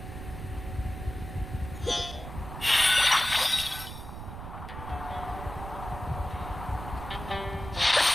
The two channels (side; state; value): right; noise; rumble, 10 dB below the sound